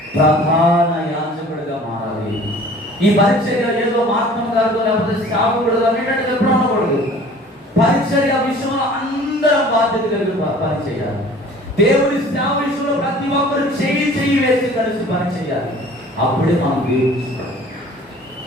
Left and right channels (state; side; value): normal; both; correlation 0.48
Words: ప్రధాన యాజకుడిగా మారాలి. ఈ పరిచర్య ఏదో మార్గం కాదు, లేకపోతే సేవకుడుగా అనేటట్టు ఎప్పుడు అనకూడదు. పరిచర్య విషయంలో అందరం బాధ్యత కలిగి పనిచేయాలి. దేవుడి సేవ విషయంలో ప్రతి ఒక్కరు చెయ్యి వేసి కలిసి పనిచేయాలి. అప్పుడే మనం దేవుడు